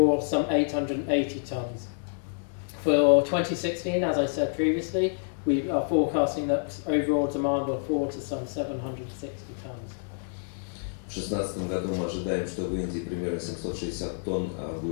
some 880 tons. For 2016, as I said previously, we are forecasting that overall demand will fall to some 760 tons. В 2016 году мы ожидаем, что в Индии примерно 760 тонн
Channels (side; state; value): right; silent; 59 dB below the other